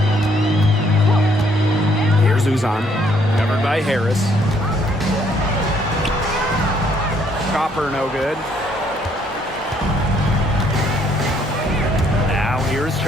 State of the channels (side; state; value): both; normal; correlation 0.67